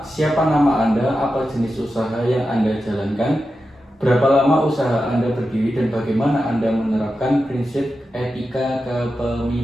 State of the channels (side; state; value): both; normal; correlation 0.90